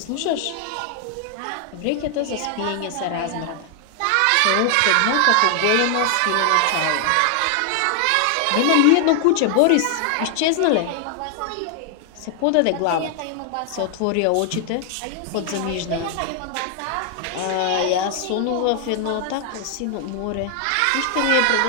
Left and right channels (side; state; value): both; different; correlation 0.00